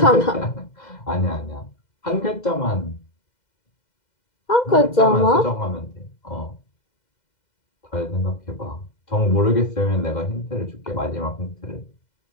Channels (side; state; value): right; late; 2.0 ms